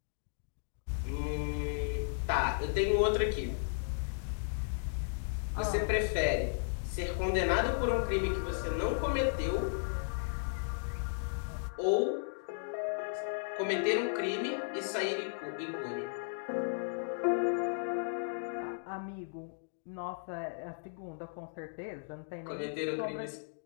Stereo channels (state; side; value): silent; right; digital silence